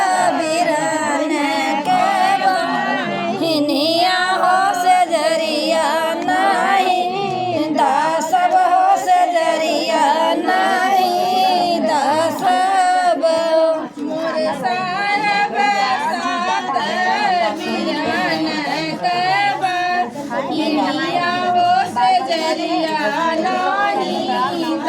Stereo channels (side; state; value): both; identical; correlation 1.00